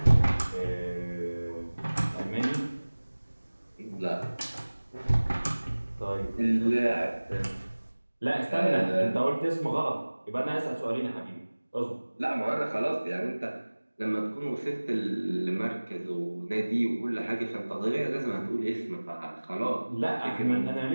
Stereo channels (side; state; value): both; inverted; correlation -1.00